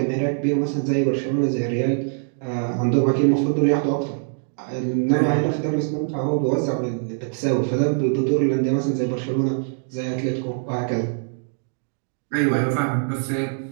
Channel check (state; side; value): silent; left; digital silence